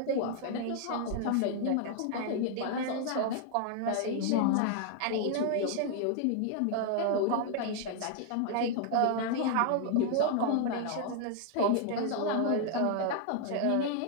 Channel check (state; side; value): different; both; correlation 0.00